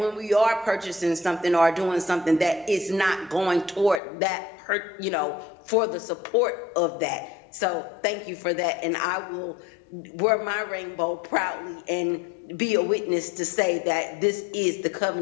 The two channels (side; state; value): right; drops out; at 4.0 s